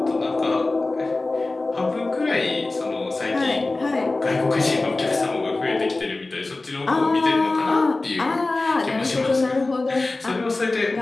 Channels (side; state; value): right; quieter; 3.2 dB